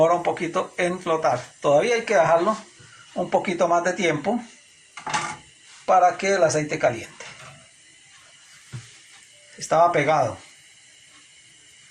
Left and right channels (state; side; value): identical; both; correlation 1.00